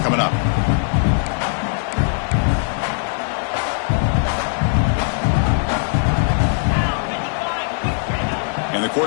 up. And the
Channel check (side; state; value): right; silent; 61 dB below the other